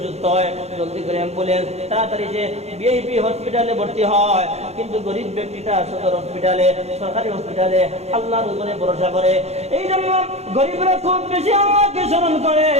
হয় জলদি করে অ্যাম্বুলেন্স তাড়াতাড়ি যে ভিআইপি হসপিটালে ভর্তি হয়, কিন্তু গরিব ব্যক্তিটা সদর হসপিটালে সরকারি হসপিটালে আল্লাহর উপরে ভরসা করে। এই জন্য গরিবরা খুব বেশি আল্লাহকে স্মরণ করে।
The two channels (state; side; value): late; left; 0.31 ms